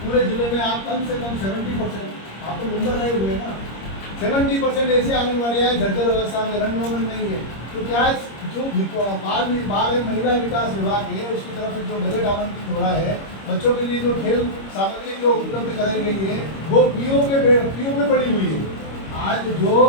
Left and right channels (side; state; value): right; late; 26 ms